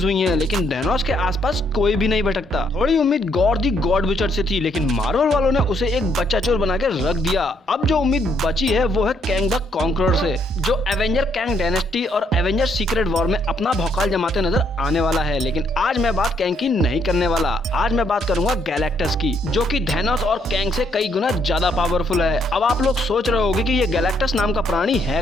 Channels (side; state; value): both; normal; correlation 0.71